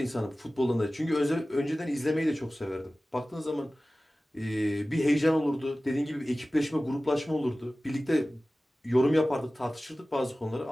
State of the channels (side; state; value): both; normal; correlation 0.97